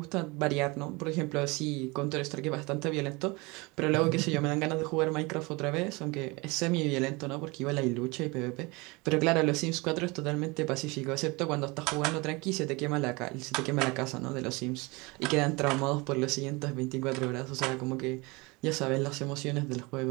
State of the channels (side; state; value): left; quieter; 25.6 dB